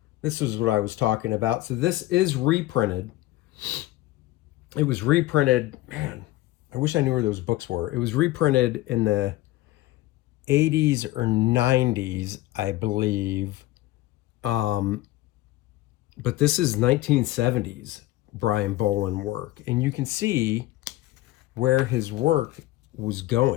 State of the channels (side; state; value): right; quieter; 16.9 dB